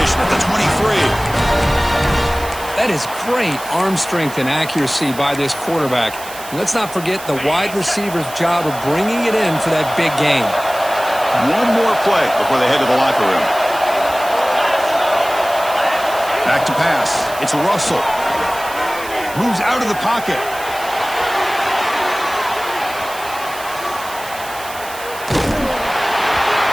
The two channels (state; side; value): noise; right; hiss, 14 dB below the sound